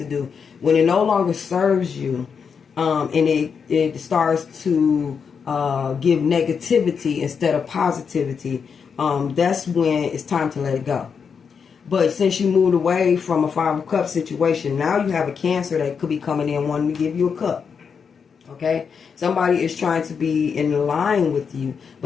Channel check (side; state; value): right; quieter; 6.3 dB